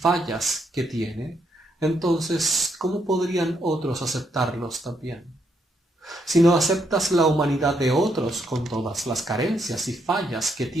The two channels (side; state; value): both; normal; correlation 0.77